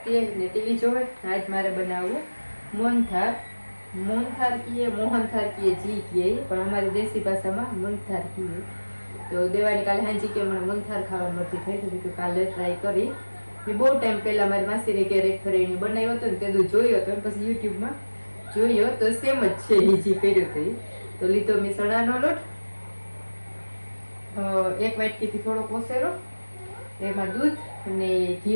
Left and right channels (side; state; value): both; inverted; correlation -1.00